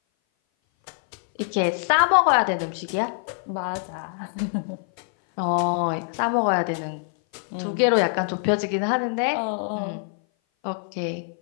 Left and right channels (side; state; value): right; silent; 58 dB below the other